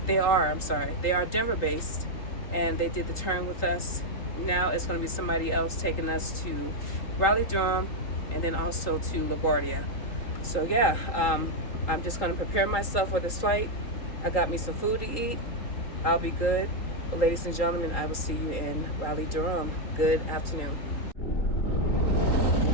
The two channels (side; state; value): right; late; 3.8 ms